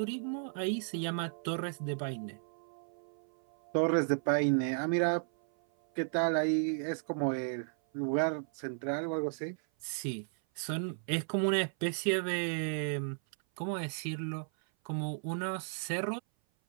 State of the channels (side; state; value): left; silent; 55 dB below the other